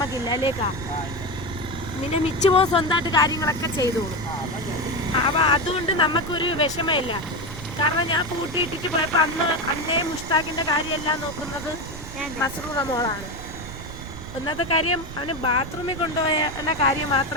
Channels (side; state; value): right; noise; rumble, 12 dB below the sound